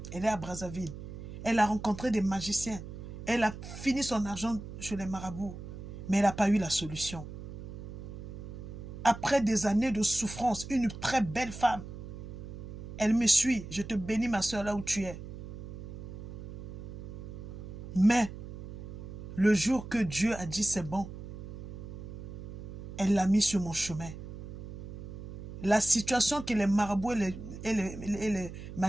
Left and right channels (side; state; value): right; noise; hum, 10 dB below the sound